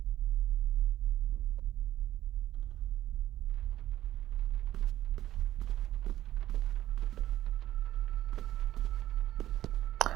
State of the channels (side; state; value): left; quieter; 13.6 dB